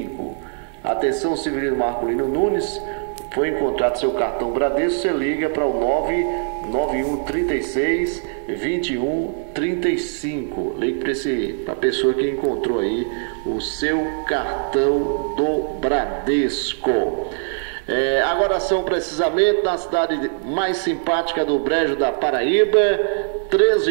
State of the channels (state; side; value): silent; left; 63 dB below the other